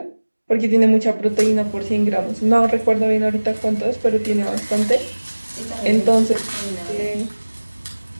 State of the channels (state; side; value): inverted; both; correlation -1.00